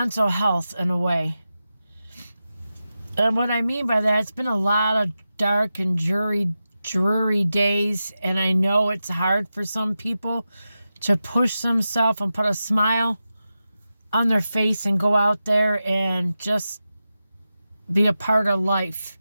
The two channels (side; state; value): both; inverted; correlation -0.92